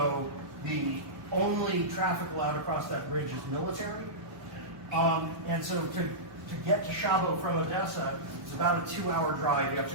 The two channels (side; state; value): left; late; 1.2 ms